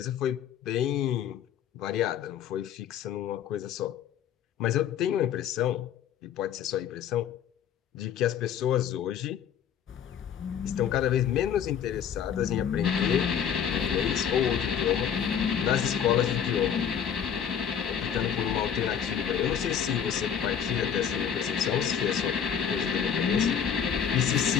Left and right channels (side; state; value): right; quieter; 8.4 dB